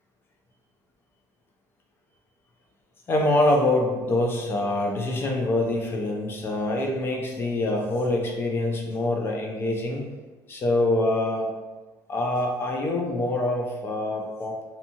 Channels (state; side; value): normal; both; correlation 0.62